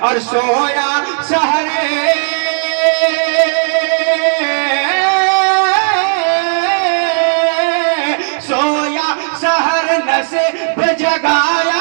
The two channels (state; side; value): silent; left; digital silence